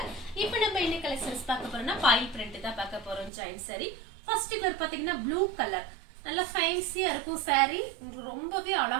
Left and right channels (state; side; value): drops out; left; at 3.3 s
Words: இப்போ நம்ம என்ன கலெக்ஷன்ஸ் பார்க்க போறோம்னா பாய் பிரிண்ட் தான் பார்க்க போறோம். ஜாயின் சாரி ஃபர்ஸ்ட் கலர் பாத்தீங்கன்னா ப்ளூ கலர், நல்ல ஃபேன்சியா இருக்கும் சாரி. ரொம்பவே